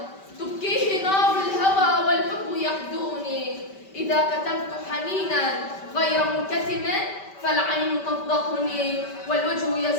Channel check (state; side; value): late; right; 5.2 ms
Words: تبكيه نار الهوى والحب يحدوني، إذا كتمت حنينا غير منكتم فالعين تفضحني والوجه